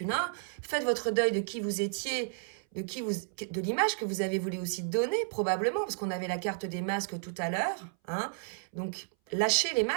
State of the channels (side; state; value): left; silent; 56 dB below the other